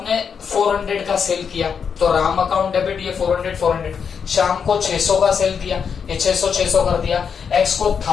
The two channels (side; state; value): right; quieter; 6.6 dB